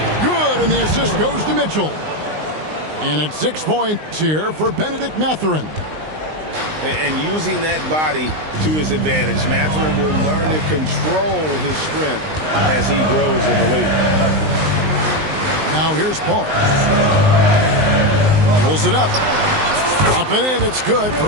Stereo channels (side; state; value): left; late; 19 ms